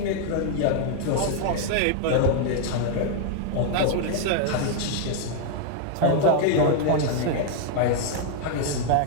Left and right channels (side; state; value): both; different; correlation 0.00